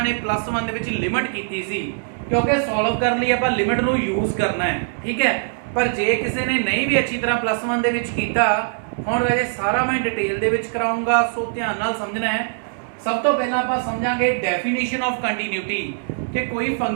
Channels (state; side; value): silent; left; 63 dB below the other